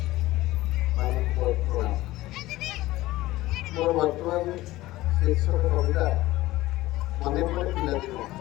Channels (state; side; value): quieter; right; 17.4 dB